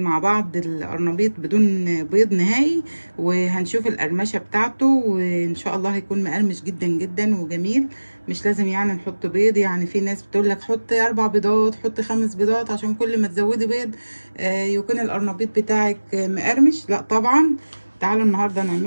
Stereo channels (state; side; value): inverted; both; correlation -1.00